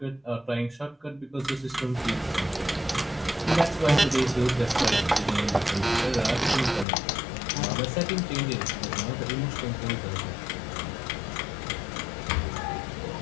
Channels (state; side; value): drops out; right; at 6.9 s